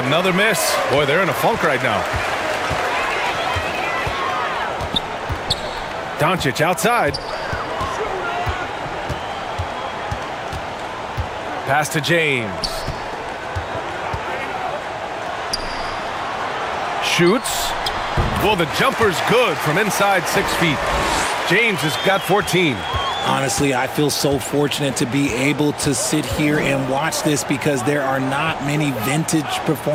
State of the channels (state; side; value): identical; both; correlation 1.00